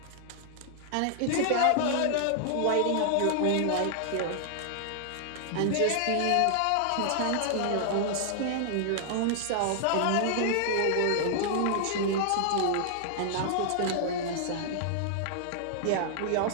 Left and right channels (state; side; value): different; both; correlation -0.01